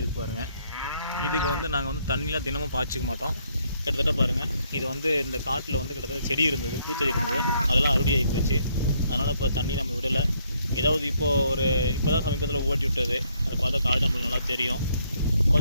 இருக்கு பாருங்கள். இதுக்கு நாங்கள் தண்ணிலாம் தினமும் பாய்ச்சிக்க மாட்டோம். கிட்டத்தட்ட பாருங்கள், இது இந்த காட்டில் கிட்டத்தட்ட செடி இருந்தது, பூச்செடி இருந்தது, அதெல்லாம் அறுவடை ஆகி போச்சு. அதனால் இப்போ தண்ணி நம்ம விடலை. ஏதாவது இப்போ தான் சமீபத்தில் ஓட்டி விட்டது. அதை பார்த்தா காடு நம்மளுக்கு நல்லா தெரியும்.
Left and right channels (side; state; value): both; inverted; correlation -0.71